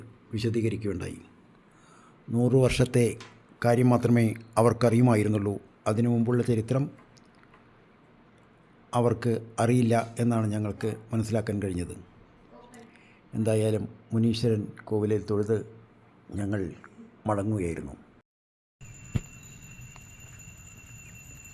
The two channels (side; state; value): both; identical; correlation 1.00